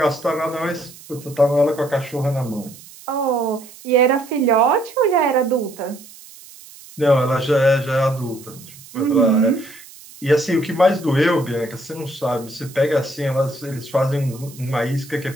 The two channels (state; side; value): noise; right; hiss, 20 dB below the sound